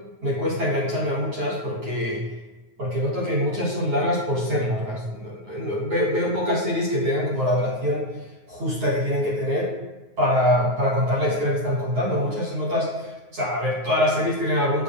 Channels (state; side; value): late; left; 9.4 ms